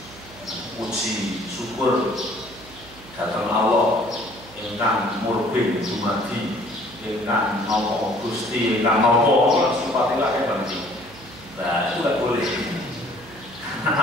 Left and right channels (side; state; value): right; noise; hum, 20 dB below the sound